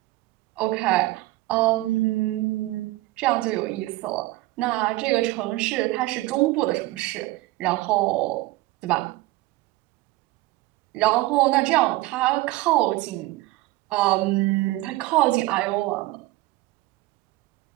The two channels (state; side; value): quieter; left; 19.1 dB